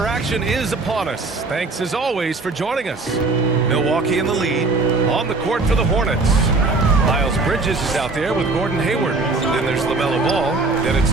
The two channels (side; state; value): left; quieter; 3.6 dB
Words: action is upon us. Thanks as always for joining us. Milwaukee in the lead. On the court for the Hornets. Miles Bridges is out there with Gordon Hayward. Then there's LaMelo Ball. Then it's